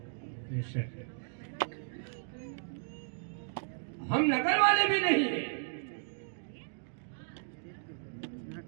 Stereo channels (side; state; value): left; silent; digital silence